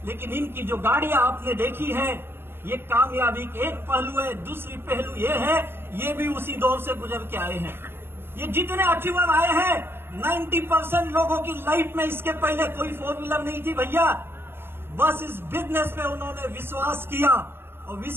लेकिन इनकी जो गाड़ियां आपने देखी है, ये कामयाबी के एक पहलू है। दूसरी पहलू ये है, ये भी उसी दौर से गुजर के आए हैं। ये जितने अचीवर आए हैं, 90% लोगों की लाइफ में इसके पहले कोई 4 व्हीलर नहीं थी भैया। बस इस बिजनेस पे उन्होंने विश्वास किया, और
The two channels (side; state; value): left; late; 0.11 ms